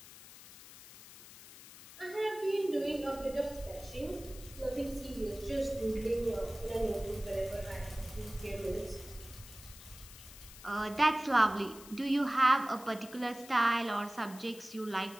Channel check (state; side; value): noise; left; hiss, 17 dB below the sound